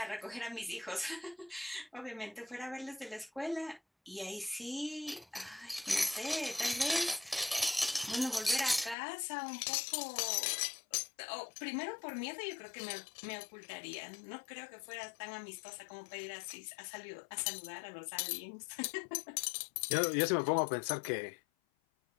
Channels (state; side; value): drops out; right; at 9.0 s